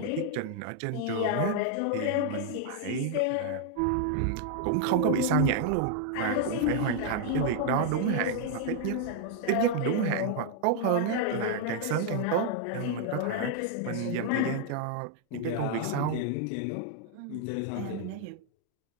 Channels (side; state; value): both; different; correlation 0.00